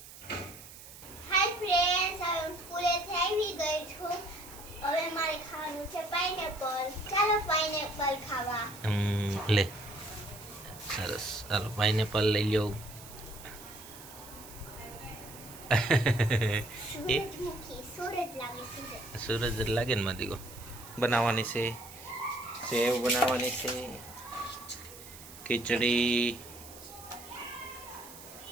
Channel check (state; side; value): noise; right; hiss, 16 dB below the sound